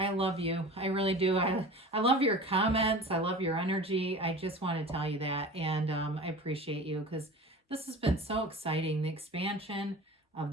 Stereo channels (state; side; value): normal; both; correlation 0.37